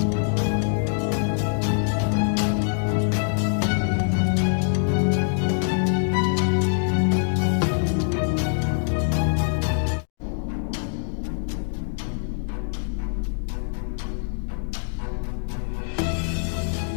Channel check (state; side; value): silent; right; digital silence